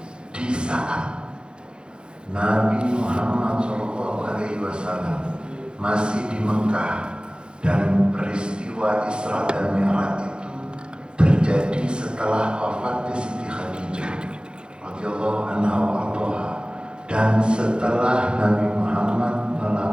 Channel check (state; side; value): late; left; 0.051 ms